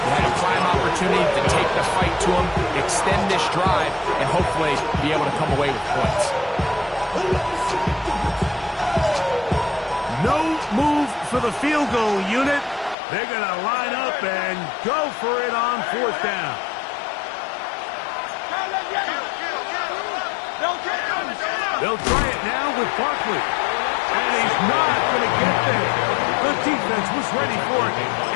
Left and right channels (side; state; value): right; drops out; at 13.0 s